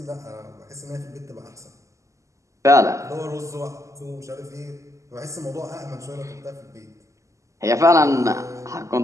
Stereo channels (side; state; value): left; late; 0.15 ms